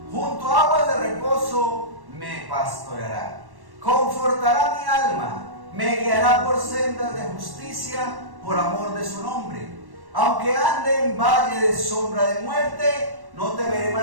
Junto a aguas de reposo me pastoreará. Confortará mi alma, me guiará por sendas de justicia por amor de su nombre. Aunque ande en valle de sombra de muerte, no temeré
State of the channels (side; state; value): left; late; 1.1 ms